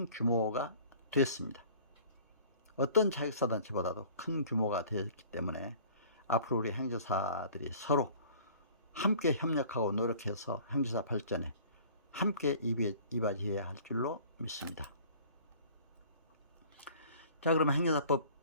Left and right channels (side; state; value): both; inverted; correlation -0.49